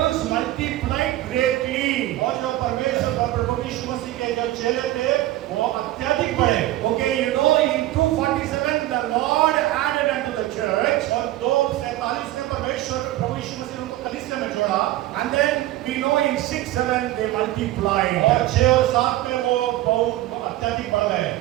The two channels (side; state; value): left; quieter; 15.7 dB